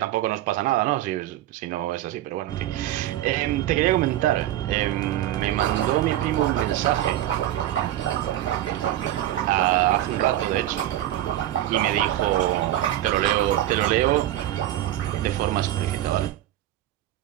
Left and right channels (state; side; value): quieter; left; 13.5 dB